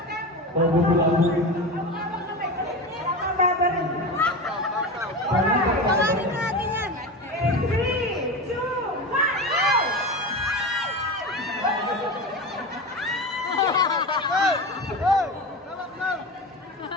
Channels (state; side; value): normal; both; correlation 0.25